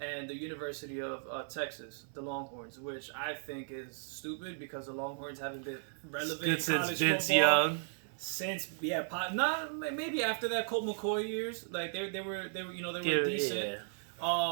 the University of Texas, the Longhorns, which I think is stupid because the Longhorns haven't been relevant in college Vince football Young. Since not maybe after that Colt McCoy years, like they were decent,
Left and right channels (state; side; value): silent; left; 54 dB below the other